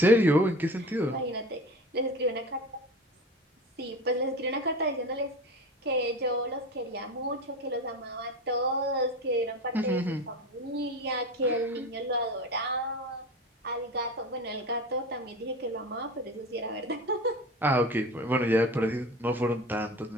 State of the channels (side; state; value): both; normal; correlation 0.32